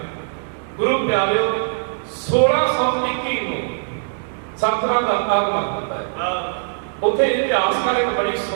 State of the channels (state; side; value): silent; left; 65 dB below the other